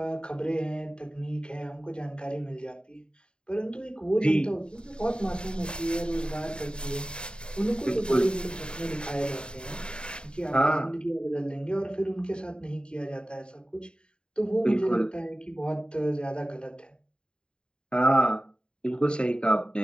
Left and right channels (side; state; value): right; late; 0.051 ms